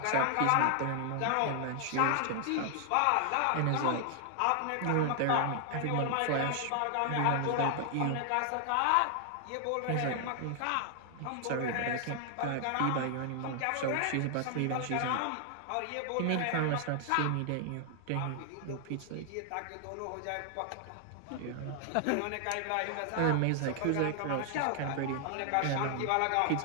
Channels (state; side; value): different; both; correlation 0.00